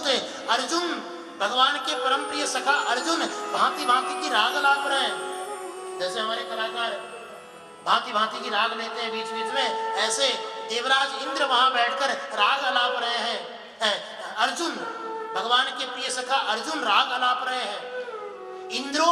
अर्जुन भगवान के परम प्रिय सखा अर्जुन भांति भांति की राग लाप रहे हैं। जैसे हमारे कलाकार भांति भांति की राग लेते हैं बीच बीच में, ऐसे देवराज इंद्र वहां बैठकर राग अलाप रहे हैं। अर्जुन भगवान के प्रिय सखा अर्जुन राग अलाप रहे हैं। इंद्रो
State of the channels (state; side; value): identical; both; correlation 1.00